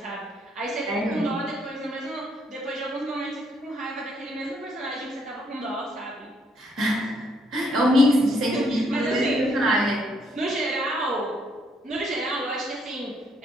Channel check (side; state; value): both; normal; correlation 0.71